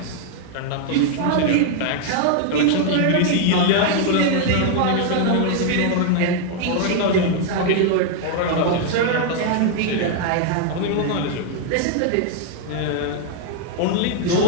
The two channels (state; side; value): different; both; correlation 0.00